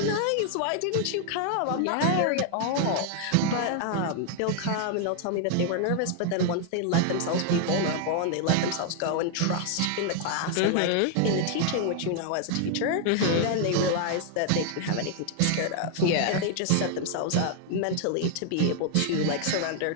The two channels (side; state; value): both; different; correlation 0.00